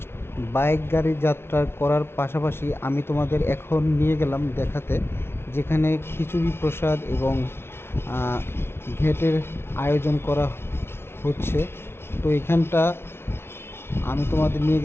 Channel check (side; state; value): right; late; 0.12 ms